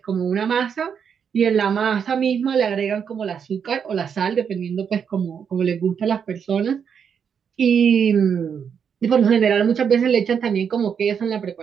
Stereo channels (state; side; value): quieter; left; 7.2 dB